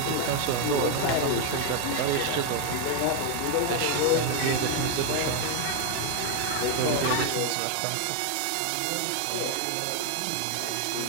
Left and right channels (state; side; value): different; both; correlation 0.01